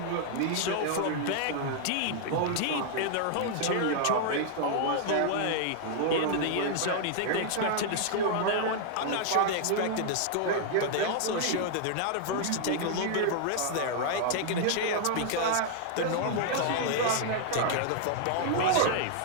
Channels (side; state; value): both; different; correlation -0.01